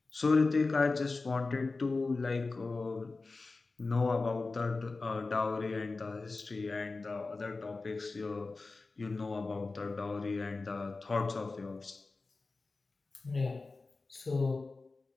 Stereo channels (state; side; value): quieter; right; 3.7 dB